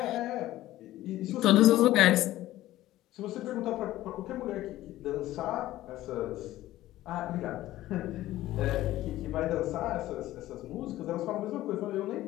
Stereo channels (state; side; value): quieter; right; 15.3 dB